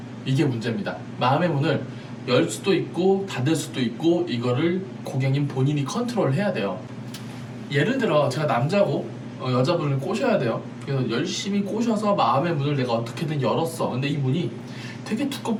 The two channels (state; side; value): identical; both; correlation 1.00